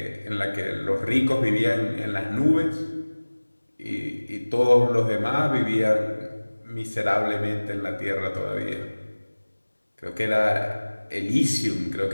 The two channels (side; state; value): both; inverted; correlation -1.00